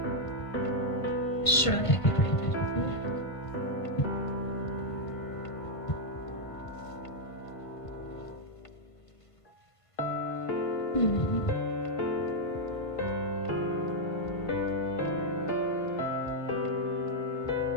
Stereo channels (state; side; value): late; right; 1.5 ms